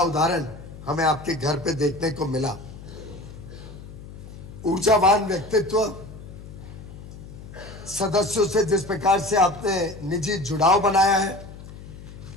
उदाहरण हमें आपके घर पे देखने को मिला। ऊर्जावान व्यक्तित्व, सदस्यों से जिस प्रकार से आपने निजी जुड़ाव बनाया है,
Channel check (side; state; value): left; noise; hum, 15 dB below the sound